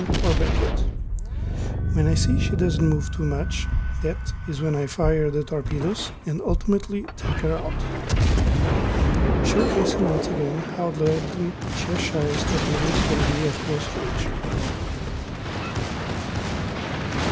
or backward. When I see she doesn't move too much, that is when I fire the torpedoes and ultimately take her out. Showcasing once again how deadly Cheshire's torpedoes can be at close range.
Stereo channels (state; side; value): identical; both; correlation 1.00